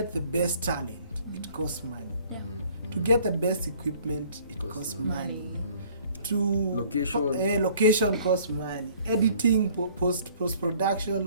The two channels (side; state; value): both; inverted; correlation -0.55